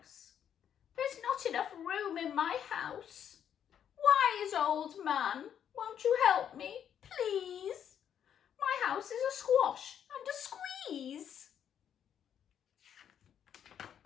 "There's not enough room in my house. Wise old man, won't you help me, please? My house is a squash and a squeeze."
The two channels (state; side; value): quieter; right; 9.0 dB